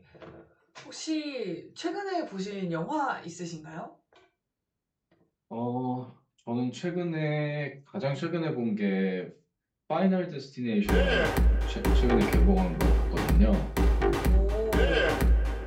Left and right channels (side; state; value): both; identical; correlation 1.00